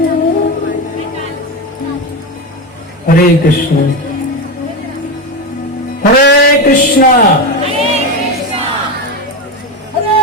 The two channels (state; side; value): normal; both; correlation 0.17